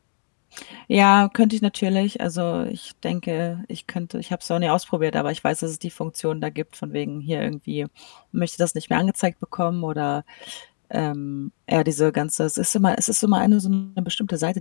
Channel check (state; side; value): silent; right; digital silence